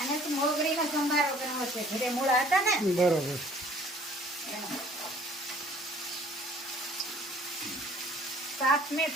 તો મોગરીનો સંભારો કરવો છે. ઘરે મૂળા હતા ને, બરોબર. સાથ મેં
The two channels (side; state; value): both; normal; correlation 0.55